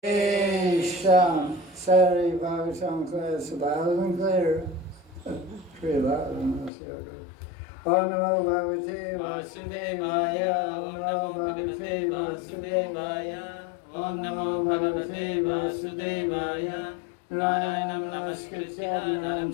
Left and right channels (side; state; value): right; drops out; at 6.7 s